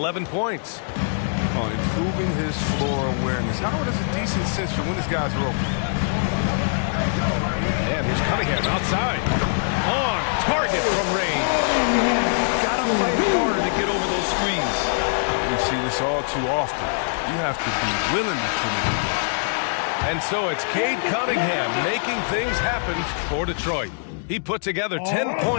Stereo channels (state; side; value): silent; right; digital silence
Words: points. On improving his floor awareness. Howard has a decent sense for when his guys are open. And here's Cunningham outside. On target from range. Gotta fight harder to get over those screens. We see this all too often. You have to be willing to put it in. And so it's Cade Cunningham making things happen for Detroit. He put together 10